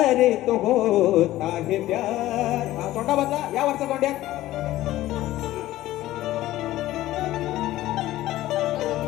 तो होता है प्यार. तोंडा बदला या वरचा तोंड्यात.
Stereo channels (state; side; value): quieter; right; 15.5 dB